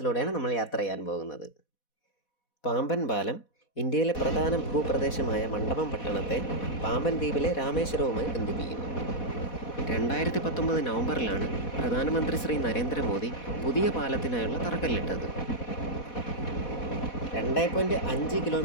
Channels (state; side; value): late; right; 4.1 ms